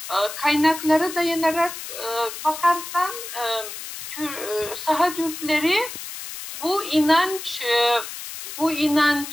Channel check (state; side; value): noise; left; hiss, 10 dB below the sound